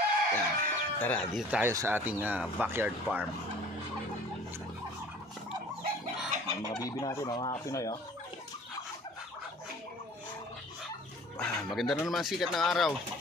Yan, tara, dito tayo sa ating backyard farm. Ang mga bibi natin mga kapinoy, oh. Maganda na naman sikat ng araw.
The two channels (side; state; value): both; normal; correlation 0.49